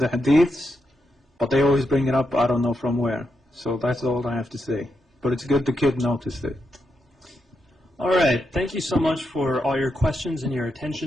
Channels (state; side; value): normal; both; correlation 0.83